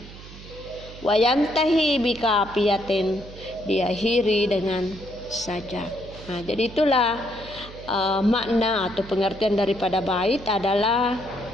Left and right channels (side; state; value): right; noise; hum, 16 dB below the sound